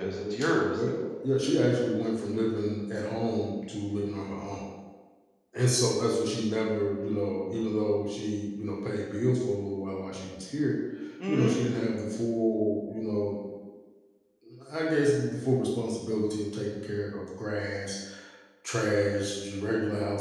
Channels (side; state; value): both; identical; correlation 1.00